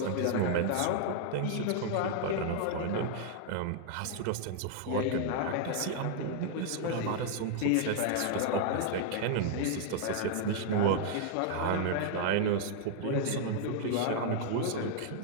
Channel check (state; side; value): different; both; correlation -0.01